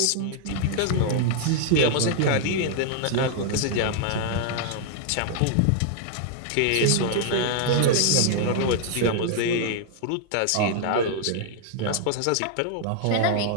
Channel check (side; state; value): both; different; correlation -0.01